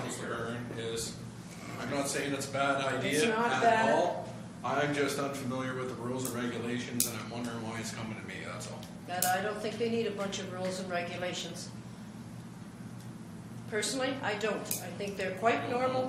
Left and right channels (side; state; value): both; identical; correlation 1.00